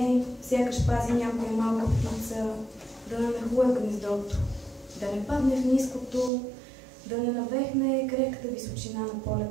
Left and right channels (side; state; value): left; drops out; at 6.3 s